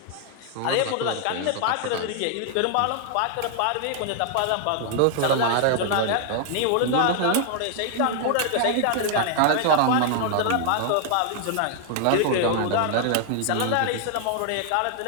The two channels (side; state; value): both; different; correlation 0.00